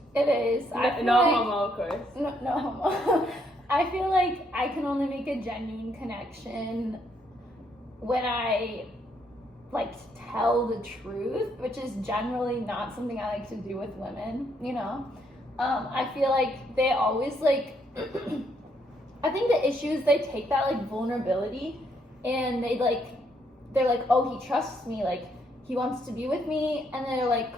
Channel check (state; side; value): normal; both; correlation 0.72